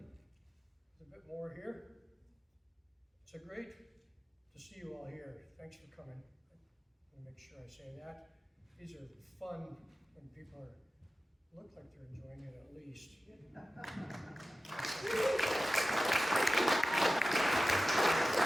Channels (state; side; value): normal; both; correlation 0.95